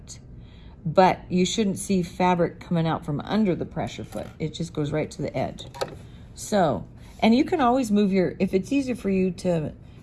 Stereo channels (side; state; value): both; identical; correlation 1.00